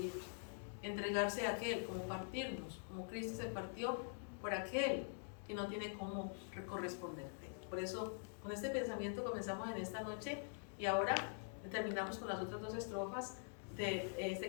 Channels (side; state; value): right; silent; digital silence